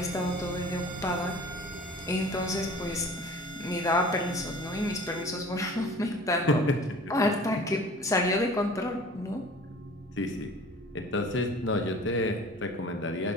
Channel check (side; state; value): both; normal; correlation 0.45